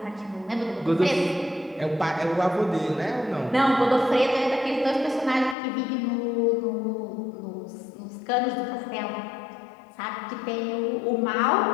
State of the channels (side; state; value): right; drops out; at 5.6 s